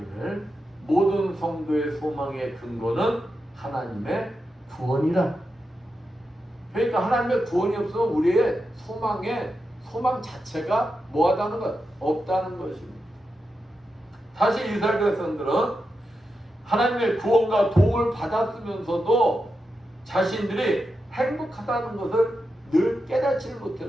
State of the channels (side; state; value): both; normal; correlation 0.88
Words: 모든 성도의 소망의 근거는 하나님의 구원이라. 그러니까 하나님의 구원이 없으면 우리의 소망 자체가 뭐하다는 것? 없다는 것입니다. 사실 이스라엘 백성들은 하나님의 구원과 도움을 받았으면서도 자신들이 행복하다는 것을 늘 깨닫지